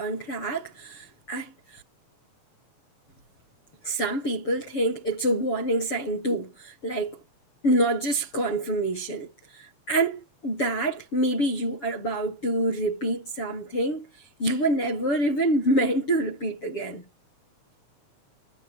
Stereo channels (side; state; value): right; late; 7.1 ms